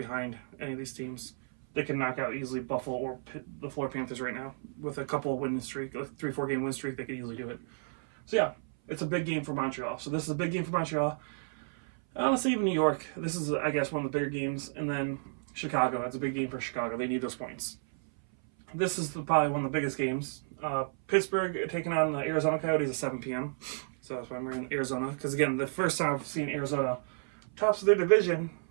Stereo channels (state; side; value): silent; left; 56 dB below the other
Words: any of these teams. They can knock out easily Buffalo or the Florida Panthers right now with a couple of winning streak, a 3-4 game win streak. They could easily do it. So yeah, it's a big game for Montreal. So this is a big game for Montreal. Honestly, even New York, this is, I guess, one of the bigger games. And then Chicago, it's a big game for Chicago. They need those points. This is probably one of the biggest games. Pittsburgh taking on the Arizona Coyotes at 7 p.m. So that's why I'm in Arizona. Because, again, the first time I've seen Arizona tops of their division.